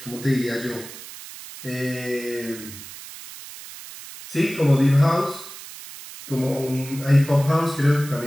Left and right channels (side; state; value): right; noise; hiss, 14 dB below the sound